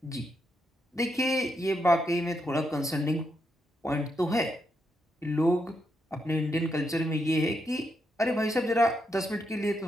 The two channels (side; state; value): both; normal; correlation 0.81